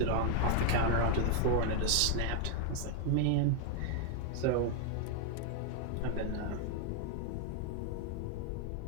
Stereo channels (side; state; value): both; different; correlation 0.01